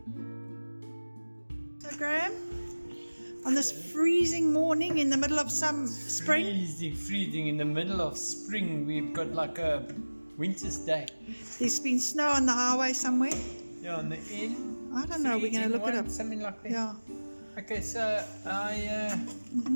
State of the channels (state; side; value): inverted; both; correlation -1.00